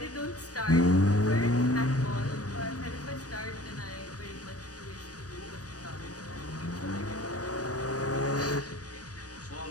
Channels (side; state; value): right; late; 0.67 ms